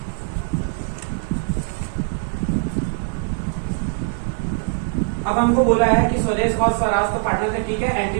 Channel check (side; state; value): left; silent; digital silence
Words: अब हमको बोला है कि स्वदेश और स्वराज तो पार्टनर है, ठीक है।